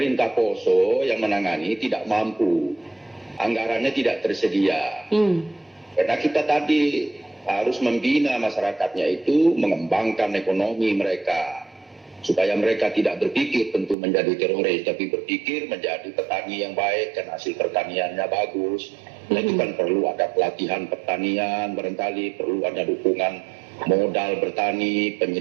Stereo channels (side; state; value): left; drops out; at 14.0 s